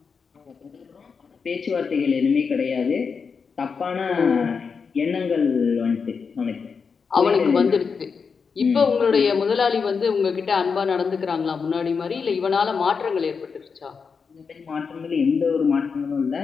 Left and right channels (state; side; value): quieter; right; 5.6 dB